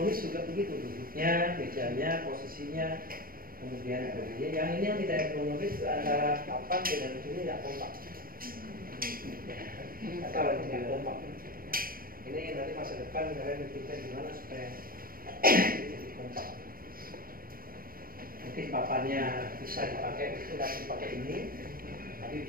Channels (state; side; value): late; left; 0.42 ms